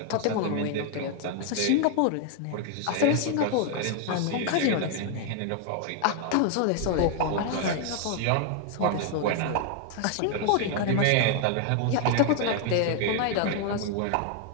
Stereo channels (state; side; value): different; both; correlation 0.00